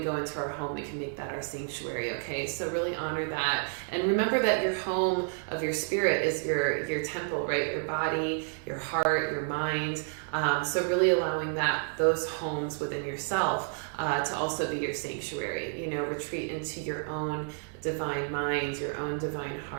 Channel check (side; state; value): left; silent; 58 dB below the other